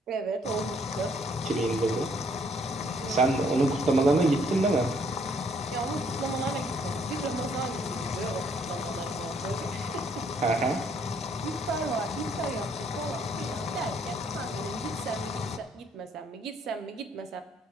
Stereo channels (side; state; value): both; normal; correlation 0.66